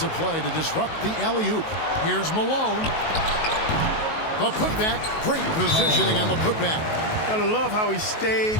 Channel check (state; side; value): late; right; 19 ms